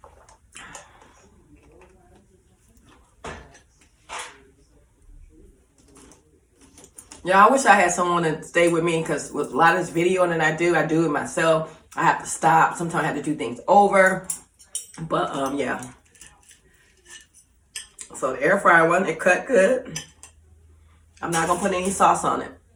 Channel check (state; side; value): identical; both; correlation 1.00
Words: Yeah, I wish I had someone to stay with me because with a lot of this videoing that I do it myself. I have to stop. Sometimes I have to do things over. But yeah. So the air fryer one, it cut good. I'm not gonna put any sauce on it,